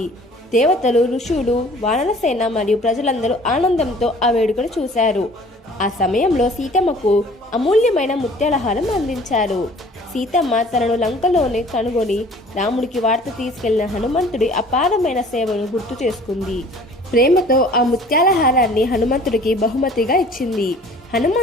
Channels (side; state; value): both; normal; correlation 0.51